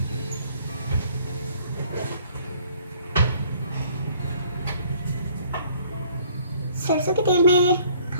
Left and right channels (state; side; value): inverted; both; correlation -0.59